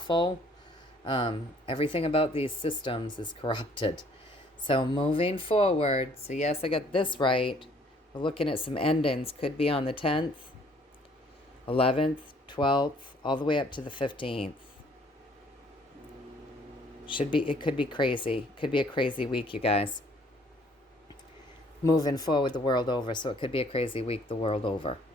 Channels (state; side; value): normal; both; correlation 0.60